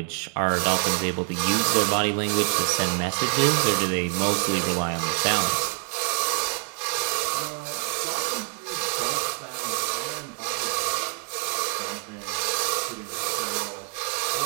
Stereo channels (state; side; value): quieter; left; 38.6 dB